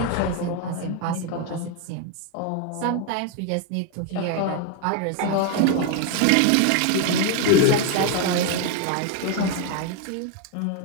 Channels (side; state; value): both; different; correlation 0.01